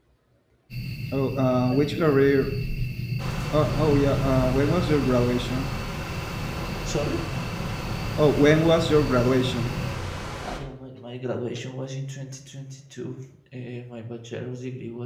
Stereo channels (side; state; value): both; identical; correlation 1.00